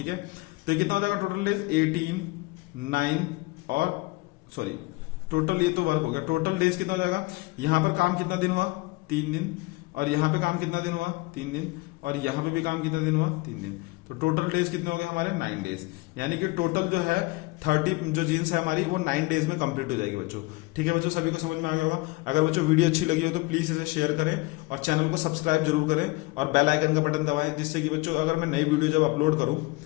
है, तो ये कितना हो जाएगा टोटल डेज, 18, 9 और सॉरी टोटल, ये तो वर्क हो गया, टोटल डेज कितना हो जाएगा, यहाँ पर काम कितना दिन हुआ, 3 दिन, और यहाँ पे काम कितना दिन हुआ, 3 दिन, और यहाँ पे भी काम कितना दिन हुआ, 3 दिन। तो टोटल डेज कितने हो गए हमारे, 9 डेज, यानी कि टोटल जो है 30 जो जीन्स है हमारी वो 9 डेज में कंप्लीट हो जाएगी बच्चों। ठीक है बच्चों, सभी को समझ में आ गया होगा। अगर बच्चों वीडियो अच्छी लगी हो तो प्लीज इसे शेयर करें और चैनल को सब्सक्राइब जरूर करें और बेल आइकन का बटन दबाएं, जिससे कि बच्चों अगर मैं नई वीडियो जब अपलोड करूं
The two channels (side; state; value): right; quieter; 23.0 dB